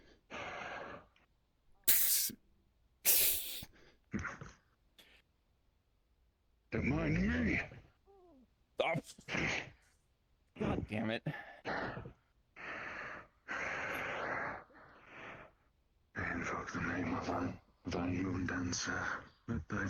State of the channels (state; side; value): identical; both; correlation 1.00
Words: Don't mind me. Oh. God damn it. I invoke the name of thine moon dancer. Let thy